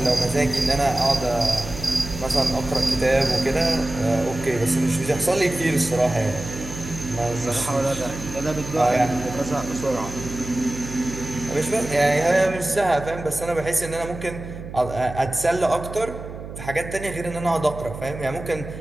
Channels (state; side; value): noise; right; hum, 11 dB below the sound